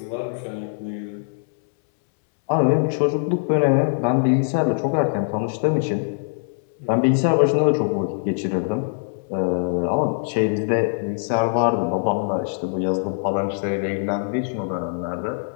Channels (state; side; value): silent; right; 63 dB below the other